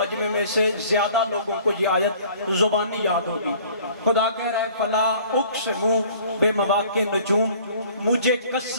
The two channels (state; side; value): inverted; both; correlation -0.52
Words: میں سے زیادہ لوگوں کو یہ آیت زبانی یاد ہوگی۔ خدا کہہ رہا ہے فلا اقسم بمواقع النجوم، مجھے